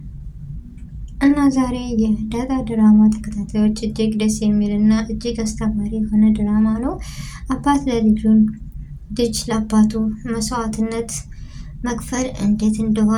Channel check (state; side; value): identical; both; correlation 1.00